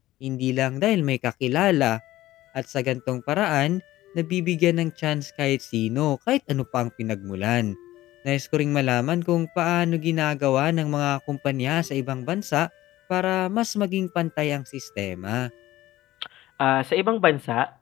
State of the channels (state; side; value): quieter; right; 15.8 dB